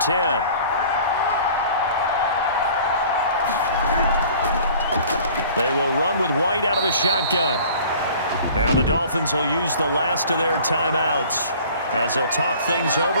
10. They will run with White out of the shotgun. Now the Dolphins will use the last of their timeouts as they'll talk things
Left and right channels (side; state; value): both; inverted; correlation -0.48